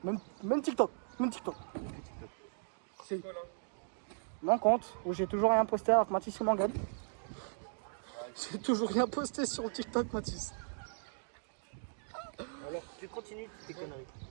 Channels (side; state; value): left; silent; digital silence